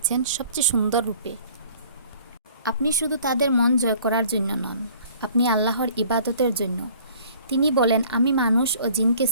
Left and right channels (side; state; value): both; inverted; correlation -0.53